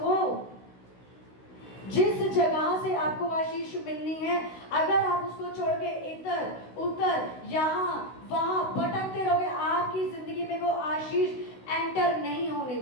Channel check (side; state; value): right; late; 16 ms